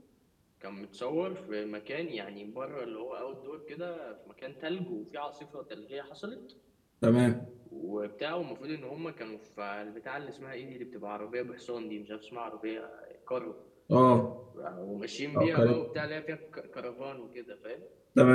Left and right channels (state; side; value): identical; both; correlation 1.00